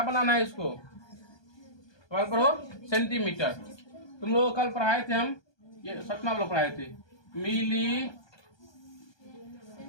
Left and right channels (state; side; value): late; right; 1.2 ms